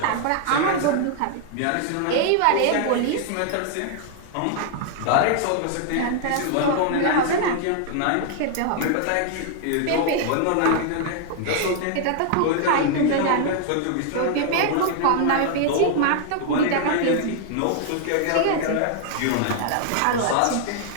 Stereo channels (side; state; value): both; different; correlation 0.00